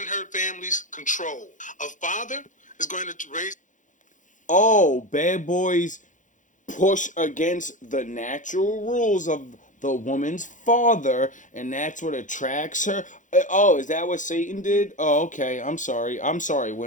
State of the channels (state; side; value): late; right; 0.37 ms